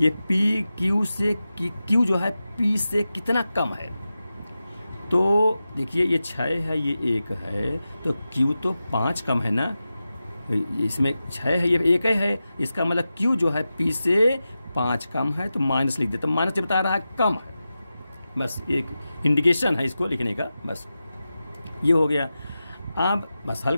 पी क्यू से, क्यू जो है पी से कितना कम है। तो देखिए ये 6 है, ये 1 है, तो क्यू तो 5 कम है ना, इसमें 6 है, ये 1 है, इसका मतलब क्यू जो है पी से 5 कम है, तो माइनस लिख देते, तो माइनस बता रहा है कम है, बस एक इंडिकेशन है इसको लिखने का, बस ये हो गया। अब बस हल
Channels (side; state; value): both; inverted; correlation -0.93